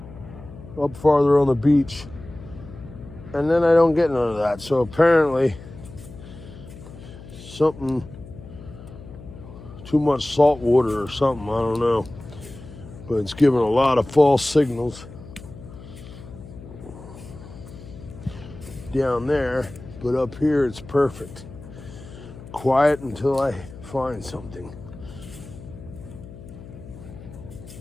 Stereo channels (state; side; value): noise; left; hum, 16 dB below the sound